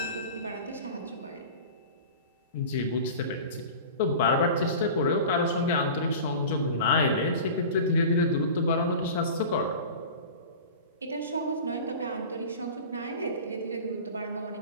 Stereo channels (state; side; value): inverted; both; correlation -0.35